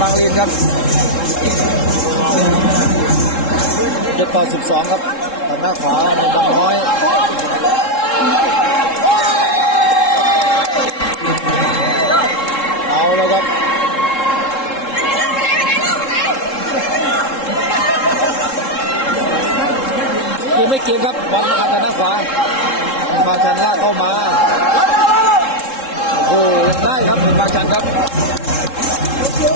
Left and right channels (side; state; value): right; late; 3.7 ms